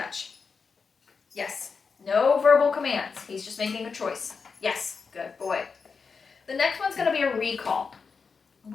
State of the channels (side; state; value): right; quieter; 5.2 dB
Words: Yes. No verbal commands. He's just making a choice. Yes. Good boy. The next one's going to be a recall.